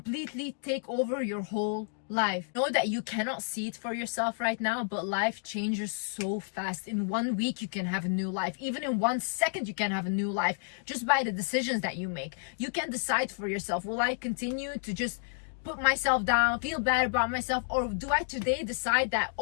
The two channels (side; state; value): right; silent; digital silence